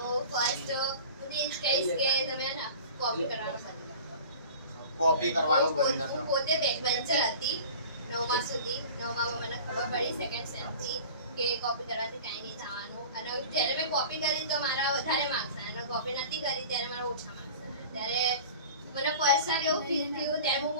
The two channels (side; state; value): both; inverted; correlation -0.40